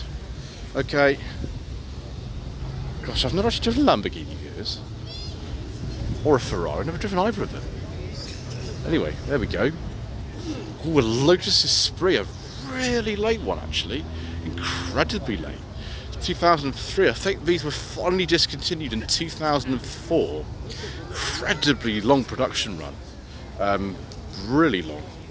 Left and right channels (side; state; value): both; identical; correlation 1.00